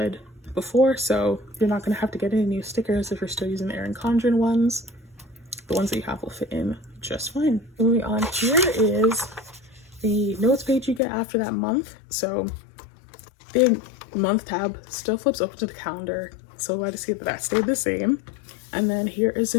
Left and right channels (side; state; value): right; drops out; at 11.0 s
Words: before, so you're not going to have to get any new stickers if you're still using the ERIN CONDREN ones. The ones that you have will fit in just fine. Moving on, here is the notes page you get after that month. So the month tab still flips open to the calendar, so glad to see that that stayed the same. And then here is